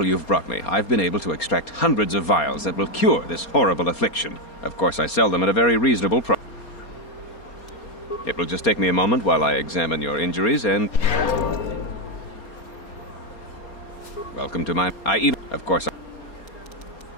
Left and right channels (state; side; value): late; right; 4.3 ms